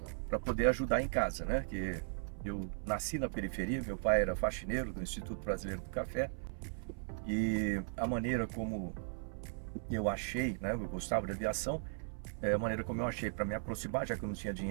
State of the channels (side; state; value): left; silent; 53 dB below the other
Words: para poder ajudar em casa, né? Que eu nasci na periferia, meu pai era faxineiro do Instituto Brasileiro do Café, e a maneira como eu achei, né? Eu gostava de aviação, a maneira como eu achei para me aproximar, já que eu não tinha